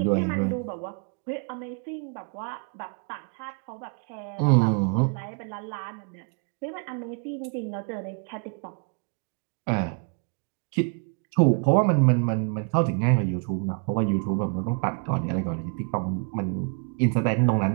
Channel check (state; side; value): quieter; left; 39.9 dB